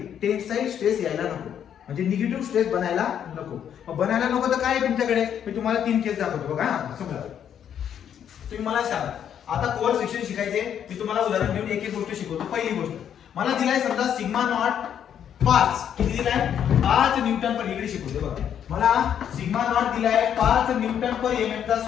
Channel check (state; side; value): quieter; right; 9.1 dB